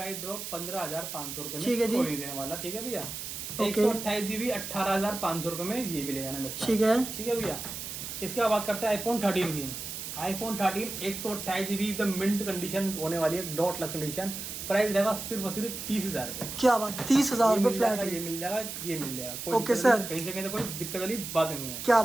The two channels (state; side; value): noise; right; hiss, 7 dB below the sound